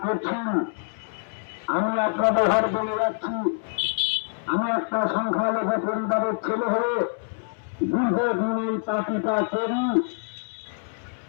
করছেন। আমি আপনাদের ঘর বলে যাচ্ছি, আমি একটা সংখ্যালঘু পরিবারের ছেলে হয়ে দীর্ঘদিন এই পার্টিটা করি।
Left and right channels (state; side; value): silent; right; 61 dB below the other